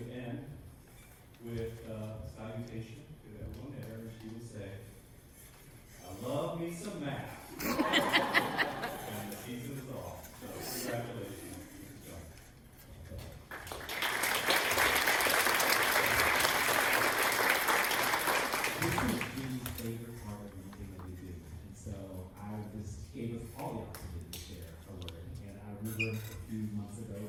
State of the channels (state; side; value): identical; both; correlation 1.00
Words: end with a salutation to everyone there, and she would say, "I love me some math." And the season is off. So congratulations. Favorite part of anything that we do. And so I just gave us all the opportunity to share a word. And I remember a few months ago